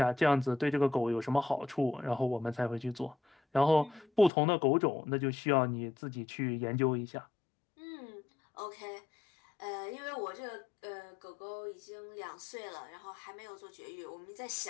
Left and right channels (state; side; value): drops out; right; at 4.3 s